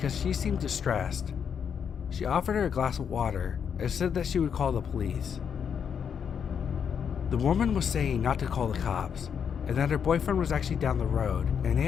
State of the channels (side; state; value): right; quieter; 7.4 dB